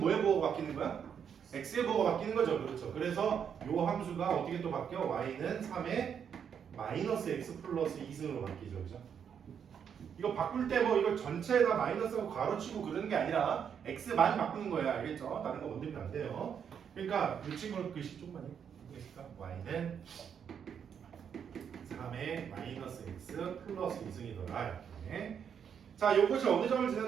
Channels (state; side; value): quieter; left; 7.7 dB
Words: 보호가 바뀌는 거야? x의 보호가 바뀌는 거죠. 그렇죠. 그래서 요 함수가 어떻게 또 바뀌어? y는 3의 마이너스 x 플러스 2승으로 바뀌죠. 그죠? 이거 바꿀 때 뭐 이거 전체에다 마이너스하고 가로치고 그러는 게 아니라 x만 바꾸는 거야. 알겠죠? 다른 거 건드리면 안 돼요. 그러니까 이 친구는 글씨 조금만요. 보겠습니까? y는 3의 마이너스 x 플러스 2승이더라. 이렇게. 자, 요것이 어느 점을